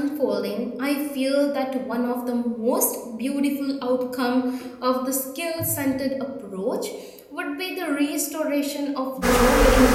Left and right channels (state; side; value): identical; both; correlation 1.00